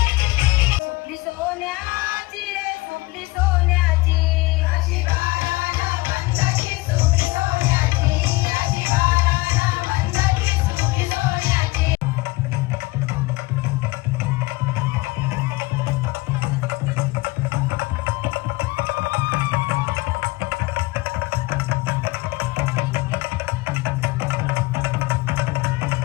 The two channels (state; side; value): quieter; right; 21.7 dB